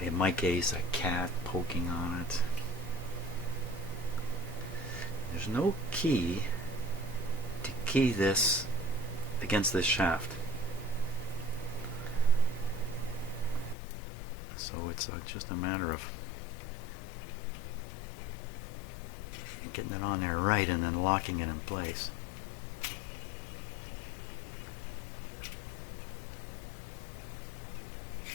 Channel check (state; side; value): drops out; right; at 13.8 s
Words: my case, a cat poking on it. There's no key to key this against this shaft. So it's just a matter of getting it on there right and then locking it in place.